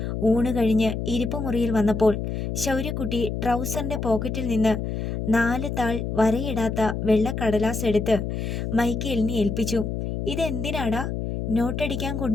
ഊണ് കഴിഞ്ഞ് ഇരിപ്പുമുറിയിൽ വന്നപ്പോൾ ശൗര്യക്കുട്ടി ട്രൗസറിൻ്റെ പോക്കറ്റിൽ നിന്ന് 4 താൾ വരയിടാത്ത വെള്ളക്കടലാസ് എടുത്ത് മൈക്കേലിനെ ഏൽപ്പിച്ചു. "ഇതെന്തിനാടാ?" "നോട്ടടിക്കാൻ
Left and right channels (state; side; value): noise; left; hum, 3 dB below the sound